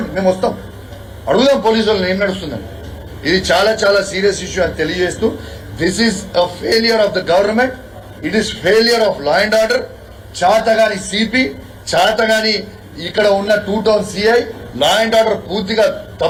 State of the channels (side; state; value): both; identical; correlation 1.00